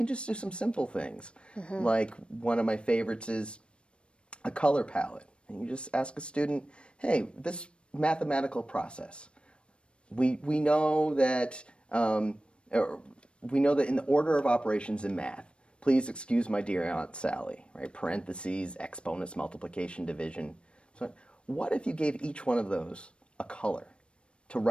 just do some simple things. Like one of my favorites is a color palette. And you just ask a student, hey, this mathematical process, we know that in the order of operations in math, please excuse my dear Aunt Sally, right? Parentheses, exponents, multiplication, division. So what if you gave each one of those a color to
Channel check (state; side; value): late; right; 0.057 ms